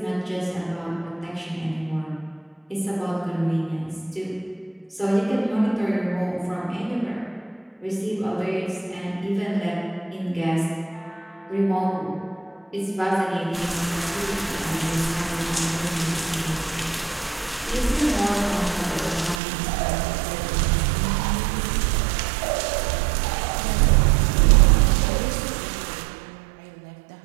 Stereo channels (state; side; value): drops out; left; at 19.4 s